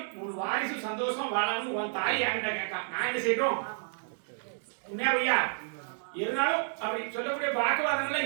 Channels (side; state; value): left; silent; digital silence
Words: ஒரு வாரிசு சந்தோஷமா வாழாமனு உன் தாய் என்கிட்ட கேட்கா நான் என்ன செய்யணும் உண்மையா? இருந்தாலும் அப்படி சொல்லக்கூடிய வாக்குவாதங்கள்லாம்